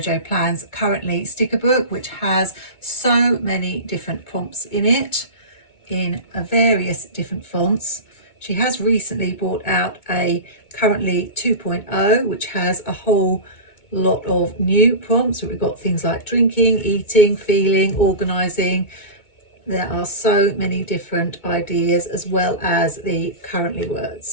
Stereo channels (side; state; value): right; late; 2.2 ms